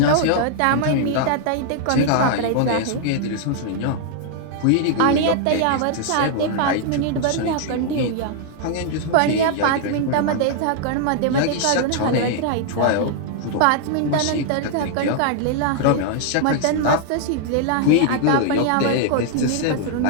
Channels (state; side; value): different; both; correlation 0.00